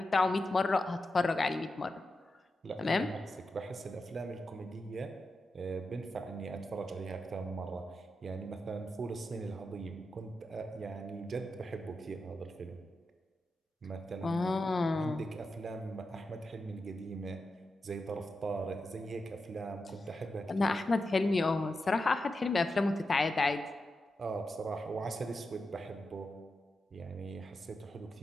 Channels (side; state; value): both; normal; correlation 0.89